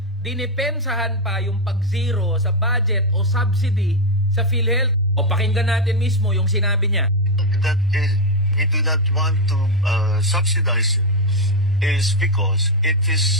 dinipensahan pa yung pag-zero sa budget o subsidy sa PhilHealth. O pakinggan natin mismo yung sinabi niya. That is, we do not want to subsidize it is because it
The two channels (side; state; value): both; normal; correlation 0.04